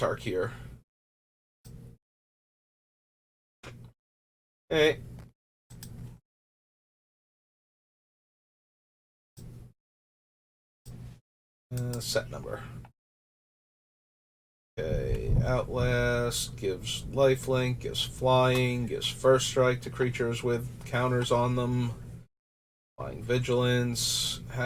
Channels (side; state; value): both; identical; correlation 1.00